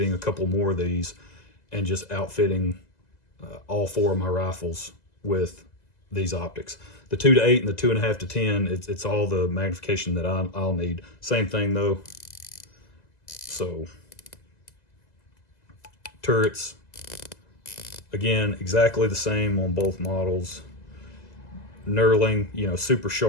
a couple more of these and just outfitting all 4 of my rifles with these optics. The 2 to 8 and the 2.5 to 10, it's all the magnification that I'll need. Same thing though. So turrets, again, exactly the same on both models. Knurling, you know, super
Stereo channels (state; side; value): late; right; 2.0 ms